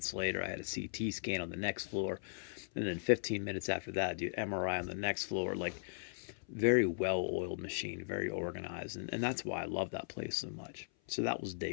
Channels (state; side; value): silent; right; 52 dB below the other